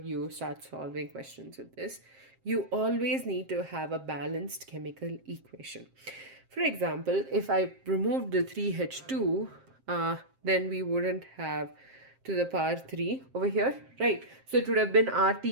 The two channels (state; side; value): late; left; 7.5 ms